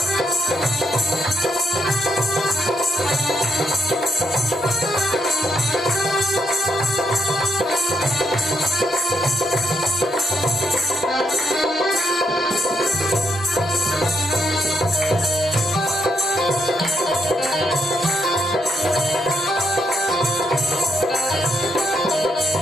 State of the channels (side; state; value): both; normal; correlation 0.78